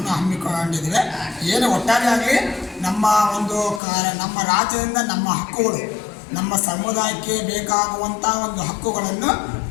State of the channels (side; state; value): right; drops out; at 3.8 s